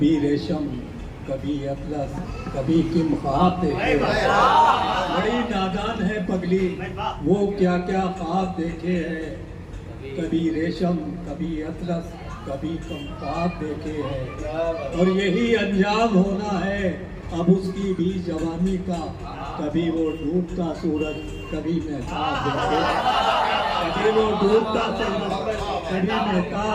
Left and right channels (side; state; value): both; identical; correlation 1.00